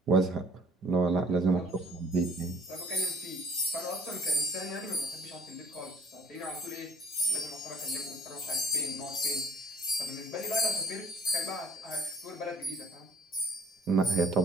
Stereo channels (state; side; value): normal; both; correlation 0.54